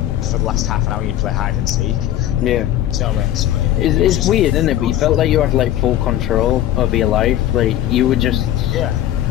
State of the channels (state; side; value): quieter; right; 12.6 dB